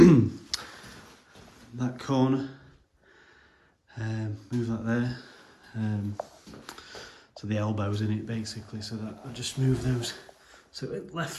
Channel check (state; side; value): identical; both; correlation 1.00